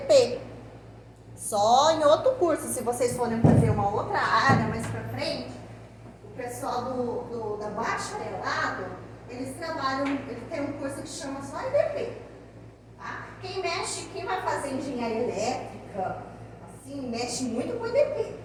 Só em outro curso, se vocês forem fazer uma outra área mais pra frente, o pessoal da bacharelado, eles tem um curso que chama só EDP. Tá? Quem vai fazer engenharia elétrica, assim, mexe muito com EDP.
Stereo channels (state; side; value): identical; both; correlation 1.00